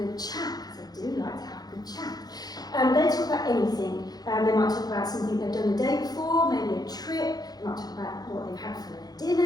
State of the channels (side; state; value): right; late; 0.19 ms